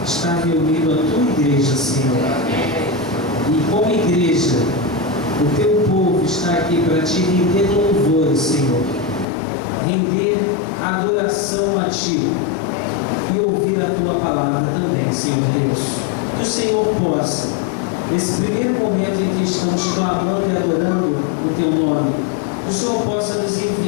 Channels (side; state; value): right; drops out; at 9.2 s